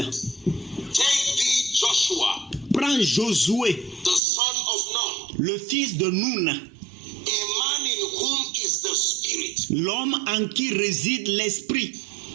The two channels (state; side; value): drops out; left; at 4.2 s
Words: take thee Joshua, prends Josué, the son of Nun, le fils de Nun, a man in whom is the Spirit. l'homme en qui réside l'Esprit.